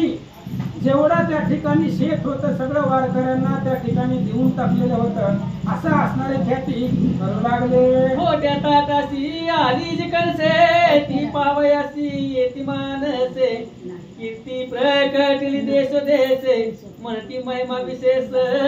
जेवढं त्या ठिकाणी शेत होतं सगळं वारकऱ्यांना त्या ठिकाणी देऊन टाकलेलं होतं. असं असणारे ख्याती करू लागले. मोठ्या ताटाशी आली जी कणसे ती पावयासी येती मानसे, कीर्ती प्रकटली देश देशे म्हणती महिमा विशेष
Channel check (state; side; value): identical; both; correlation 1.00